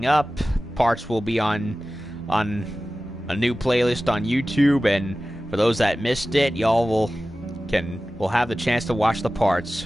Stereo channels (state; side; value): normal; both; correlation 0.96